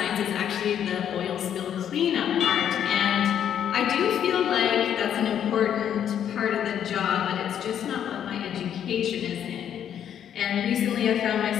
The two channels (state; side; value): quieter; right; 9.4 dB